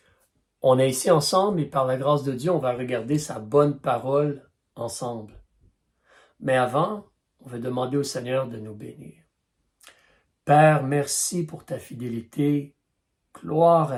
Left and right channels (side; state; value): both; identical; correlation 1.00